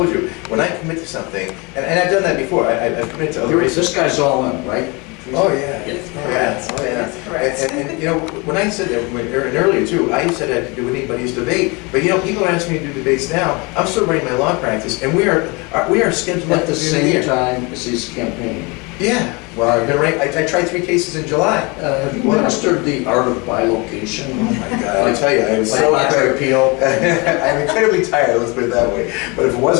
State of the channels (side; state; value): right; quieter; 27.9 dB